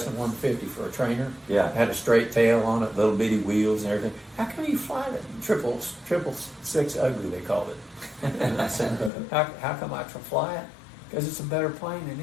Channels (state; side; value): drops out; right; at 9.1 s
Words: 150 for a trainer. Yeah. It had a straight tail on it, little bitty wheels and everything. How come you fly that? Triple six ugly, they called it. And I said, how come I fly it? Because it's a better plane than